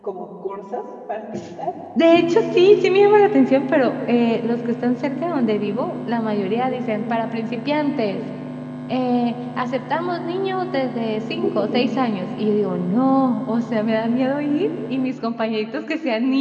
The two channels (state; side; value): identical; both; correlation 1.00